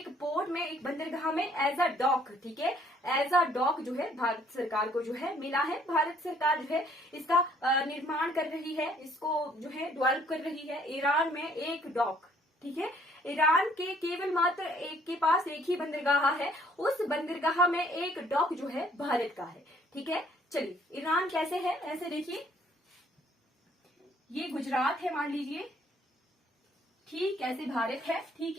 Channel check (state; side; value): normal; both; correlation 0.62